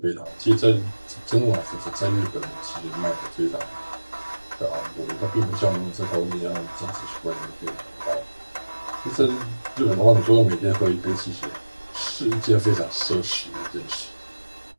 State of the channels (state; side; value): inverted; both; correlation -1.00